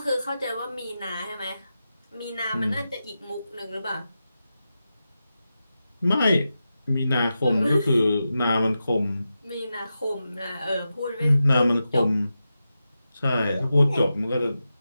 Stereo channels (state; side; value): inverted; both; correlation -0.91